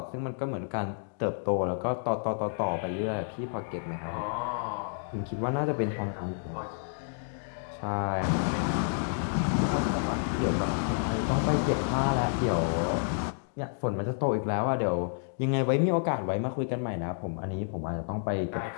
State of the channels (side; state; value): right; silent; digital silence